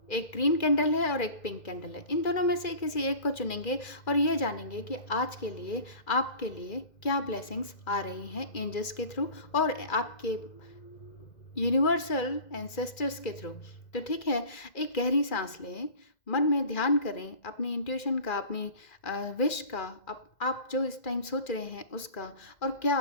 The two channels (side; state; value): right; late; 2.0 ms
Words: एक ग्रीन कैंडल है और एक पिंक कैंडल है। इन दोनों में से किसी एक को चुनेंगे और ये जानेंगे कि आज के लिए आपके लिए क्या ब्लेसिंग्स आ रही हैं एंजल्स के थ्रू और आपके यूनिवर्सल एंसेस्टर्स के थ्रू। तो ठीक है, एक गहरी सांस लें, मन में ध्यान करें अपनी इंट्यूशन का, अपनी विश का, आप जो इस टाइम सोच रहे हैं उसका, और क्या